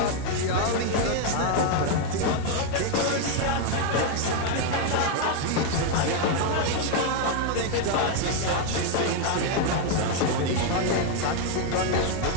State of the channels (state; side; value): different; both; correlation 0.01